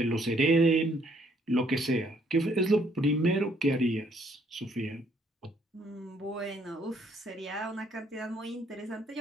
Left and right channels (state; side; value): normal; both; correlation 0.67